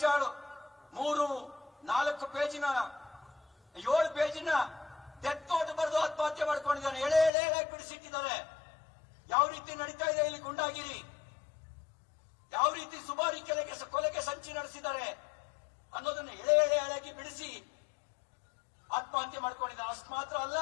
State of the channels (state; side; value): drops out; right; at 7.3 s